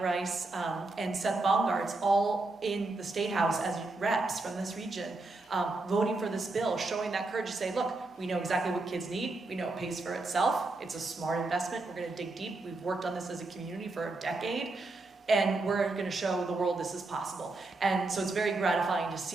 Rice, and Seth Baumgart's all in the State House as reps from this region, voting for this bill, showing that courage to say, look, we know exactly what kids need. We know it pays for itself. It's a smart investment. We're going to dig deep. We've worked on this as a community for a decade, and we're going to show the world this is possible. And so it's very gratifying to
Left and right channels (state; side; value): quieter; left; 3.2 dB